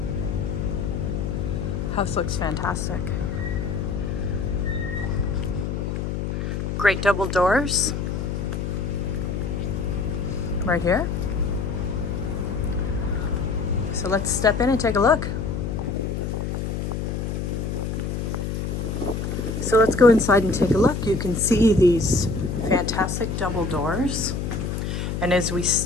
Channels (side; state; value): left; noise; hum, 2 dB below the sound